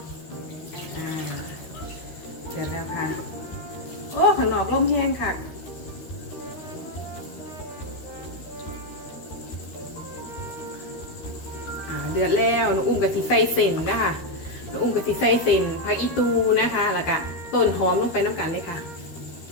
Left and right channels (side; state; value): right; late; 13 ms